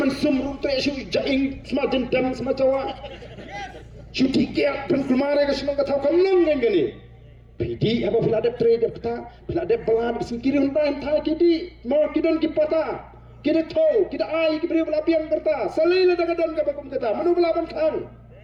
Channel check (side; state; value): both; identical; correlation 1.00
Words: sumru tresu jaing semajen dam semacawa Cuti kiat penkulmare ke semua kata kau nang gani. Pidi apa bila ada trade kata bila ada belad singkiri hentai hentai kidi mau kidon kipata kida tau kida ai kibri bela piang kerta salai la daga dan ka bakum kata manu belaban kang